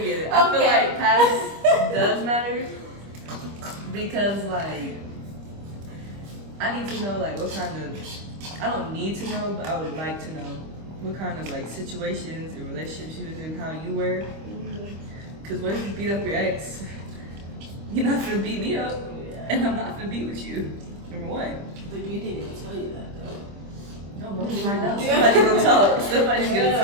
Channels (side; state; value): left; late; 25 ms